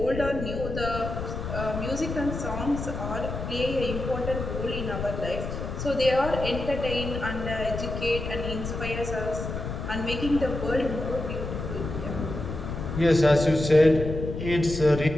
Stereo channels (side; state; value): left; noise; rumble, 5 dB below the sound